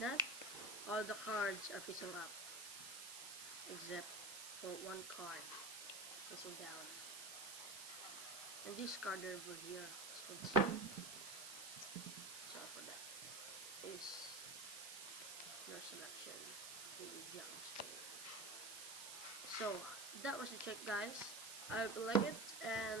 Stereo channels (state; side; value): noise; right; hiss, 7 dB below the sound